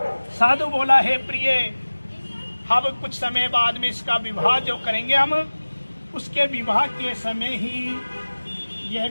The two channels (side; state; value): both; inverted; correlation -1.00